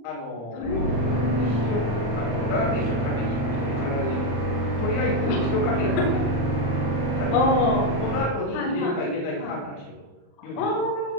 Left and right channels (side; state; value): right; late; 34 ms